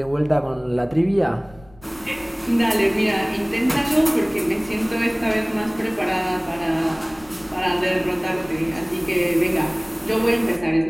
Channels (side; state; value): left; noise; rumble, 25 dB below the sound